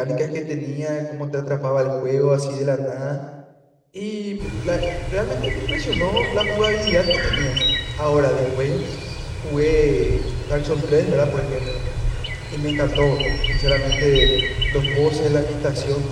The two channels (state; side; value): identical; both; correlation 1.00